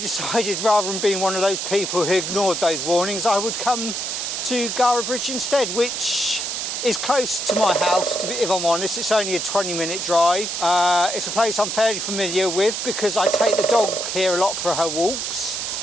rather than being one of those people who ignored those warnings, I would come to Gara Bridge instead, which is close to my house, if I'm honest. It's only a 20-minute drive. It's a place I'm fairly familiar with because I take the dog here a lot for her walks.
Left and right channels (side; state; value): right; noise; hiss, 3 dB below the sound